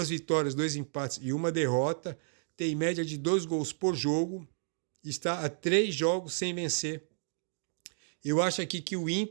vitórias, 2 empates e 1 derrota. Tem média de 2 gols por jogo. Está a 3 jogos sem vencer. Eu acho aqui que o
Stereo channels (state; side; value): silent; left; digital silence